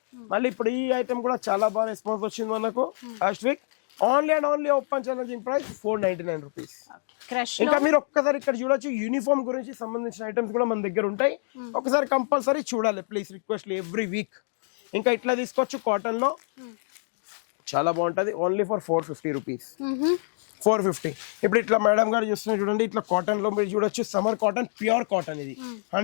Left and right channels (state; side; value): silent; right; digital silence